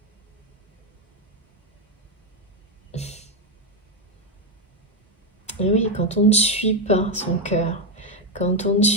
Et oui, quand on ne suit pas son cœur, quand on ne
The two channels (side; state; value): both; normal; correlation 0.07